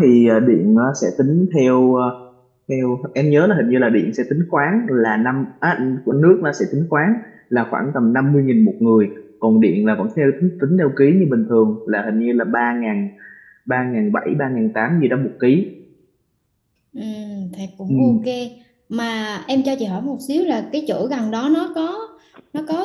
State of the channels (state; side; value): identical; both; correlation 1.00